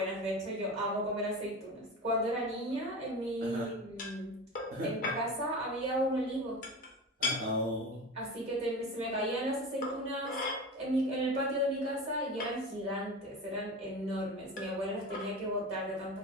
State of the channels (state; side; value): normal; both; correlation 0.29